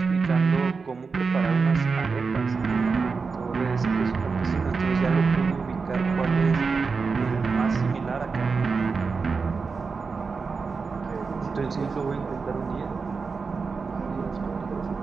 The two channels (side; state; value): left; quieter; 4.8 dB